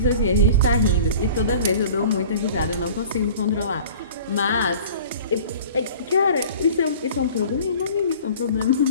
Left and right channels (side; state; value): both; inverted; correlation -0.44